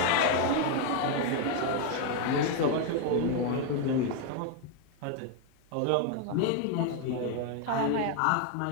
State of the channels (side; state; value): both; different; correlation 0.01